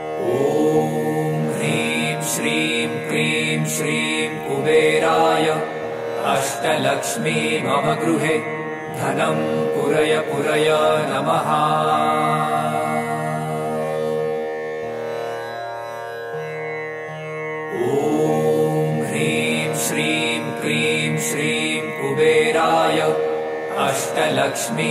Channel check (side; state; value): both; identical; correlation 1.00